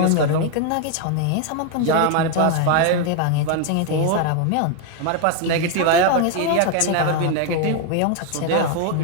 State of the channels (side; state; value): both; different; correlation 0.01